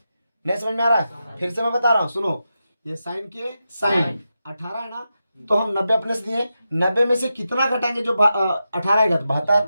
समझ में आ रहा है? फिर से मैं बता रहा हूँ, सुनो। ये साइन के साइन 18 है ना, तो हम 90 अपने से दिए। 90 में से कितना घटाएंगे? जो 18 आएगा तो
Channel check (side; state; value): both; inverted; correlation -0.89